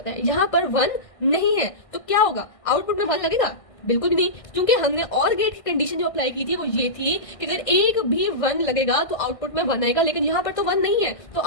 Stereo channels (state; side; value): late; right; 1.6 ms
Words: है, यहाँ पर 1 नहीं है तो क्या होगा, आउटपुट में 1 लगेगा? बिल्कुल भी नहीं, क्योंकि हमने और गेट की कंडीशन जो अप्लाई की थी वो ये थी कि अगर एक भी 1 लगेगा तो आउटपुट में 1 आएगा। लेकिन यहाँ पर तो 1 नहीं है तो